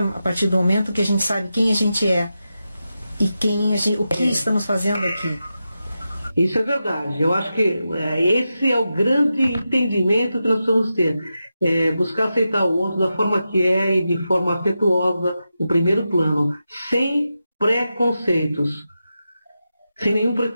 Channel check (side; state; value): both; inverted; correlation -0.90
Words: a partir do momento que a gente sabe quem a gente é e o que estamos fazendo aqui. Isso é verdade. Eu acho que esse é o grande entendimento que nós precisamos ter. Buscar aceitar o outro da forma que é e de forma afetuosa, no primeiro plano, sem preconceitos. Sem nenhum